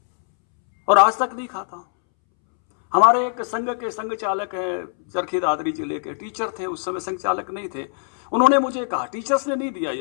और आज तक नहीं खाता हूं। हमारे एक संघ के संघ चालक हैं, चरखी दादरी जिले के, टीचर थे, उस समय संघ चालक नहीं थे। उन्होंने मुझे कहा, टीचर्स ने नहीं दिया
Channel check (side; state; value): right; silent; 64 dB below the other